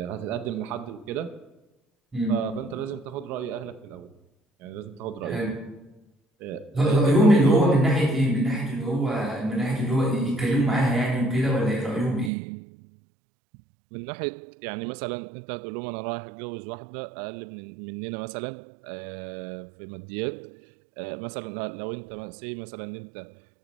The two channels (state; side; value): drops out; left; at 12.3 s